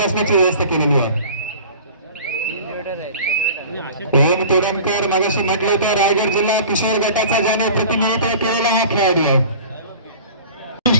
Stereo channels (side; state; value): both; inverted; correlation -0.41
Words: व्यवस्था केलेली आहे. ओम तोडणकर मगाशी म्हटलं होतं रायगड जिल्हा किशोर गटाचा ज्याने प्रतिनिधित्व केलेला हा खेळाडू आहे.